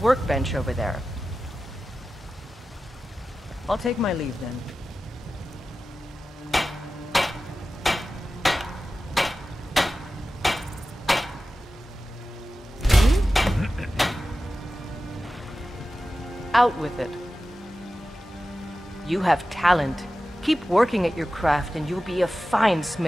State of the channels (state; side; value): normal; both; correlation 0.94